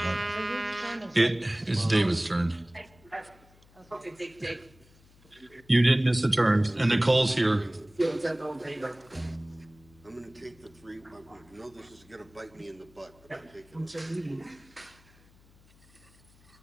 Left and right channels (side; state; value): left; noise; hum, 28 dB below the sound